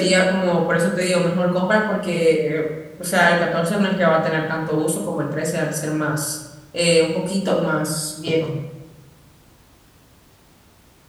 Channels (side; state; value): both; identical; correlation 1.00